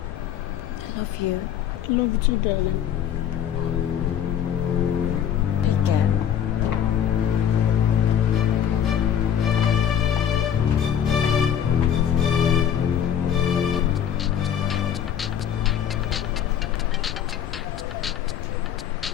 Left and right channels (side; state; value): right; quieter; 9.2 dB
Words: I love you. I love you too, darling. Take care.